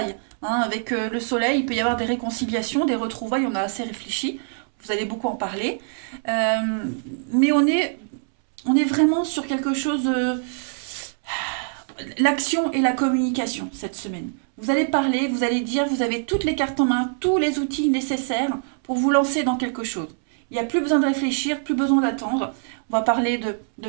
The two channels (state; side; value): silent; left; 63 dB below the other